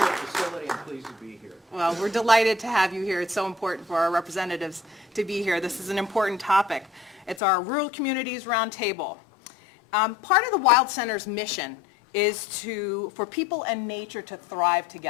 facility and pleased to be here. Well, we're delighted to have you here. It's so important for our representatives to be here. This is an important topic. It's our Rural Communities Roundtable. Part of the Wild Center's mission is for people and nature to thrive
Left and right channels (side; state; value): right; drops out; at 7.4 s